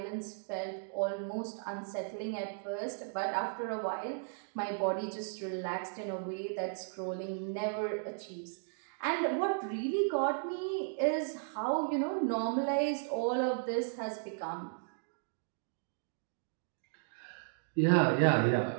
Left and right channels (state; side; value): silent; left; digital silence